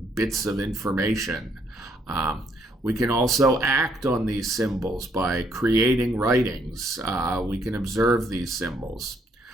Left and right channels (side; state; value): both; normal; correlation 0.70